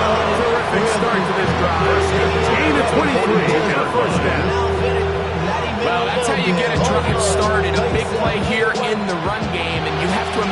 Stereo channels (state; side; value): identical; both; correlation 1.00